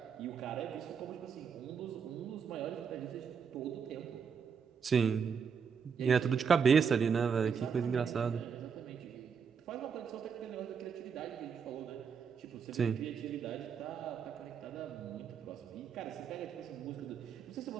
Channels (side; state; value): left; quieter; 6.6 dB